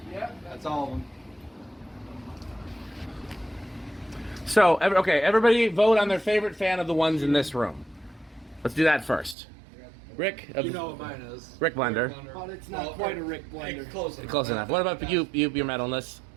Yeah. That's all of them. So everybody vote on their favorite fan of the ones in this room. Let's do that first. Rick. You know what mine is. Rick Blender. But it's not quite a Rick blender. Close enough. What about you? Your metalness.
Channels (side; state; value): left; drops out; at 9.3 s